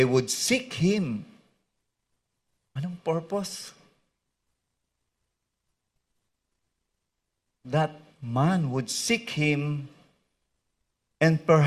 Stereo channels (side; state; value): both; identical; correlation 1.00